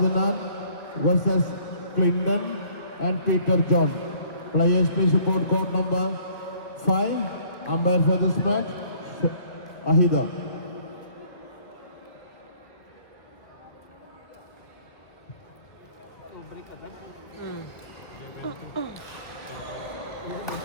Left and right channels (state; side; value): late; right; 2.0 ms